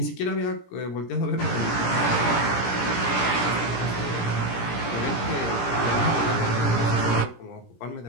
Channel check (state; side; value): late; right; 17 ms